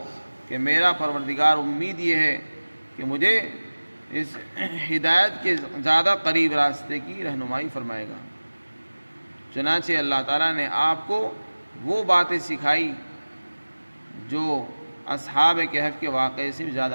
کہ میرا پروردگار امید یہ ہے کہ مجھے اس ہدایت کے زیادہ قریب راستے کی رہنمائی فرمائے گا۔ چنانچہ اللہ تعالیٰ نے آپ کو وہ باتیں سکھائی جو اصحاب کہف کے واقعے سے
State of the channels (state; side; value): inverted; both; correlation -1.00